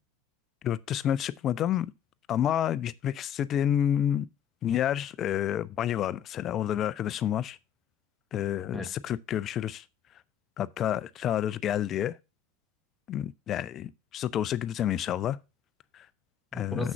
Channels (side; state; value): right; quieter; 10.0 dB